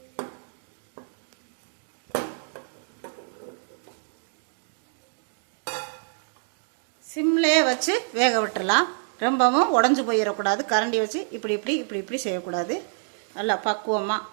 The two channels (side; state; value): left; silent; digital silence